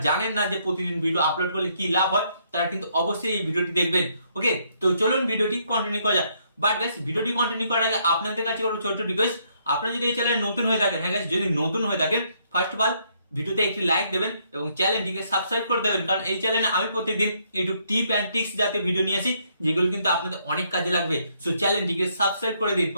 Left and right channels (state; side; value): inverted; both; correlation -0.71